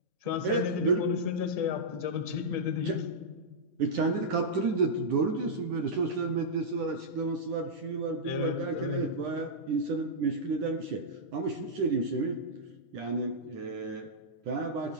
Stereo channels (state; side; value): late; left; 10 ms